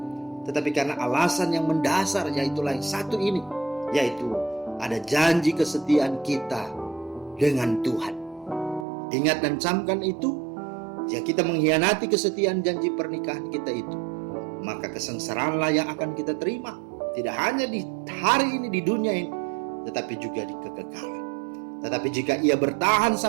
tetapi karena alasan yang mendasar, yaitulah yang satu ini, yaitu ada janji kesetiaan kita dengan Tuhan. Ingat dan camkan itu, jika kita mengkhianati kesetiaan janji pernikahan kita itu, maka kesengsaraanlah yang akan kita terima, tidak hanya di hari ini, di dunia ini, tetapi juga di kekekalan. Tetapi jika ia bertahan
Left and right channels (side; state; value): left; drops out; at 8.8 s